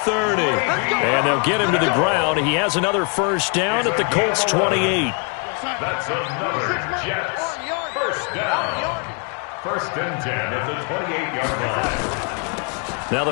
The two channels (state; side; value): quieter; right; 36.3 dB